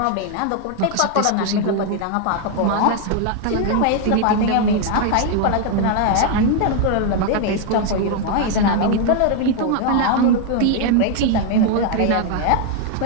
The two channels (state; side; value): different; both; correlation 0.00